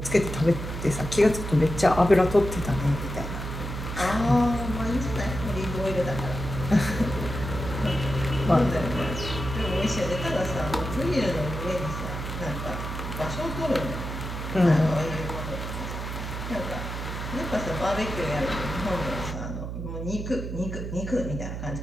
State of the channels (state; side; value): noise; right; hum, 6 dB below the sound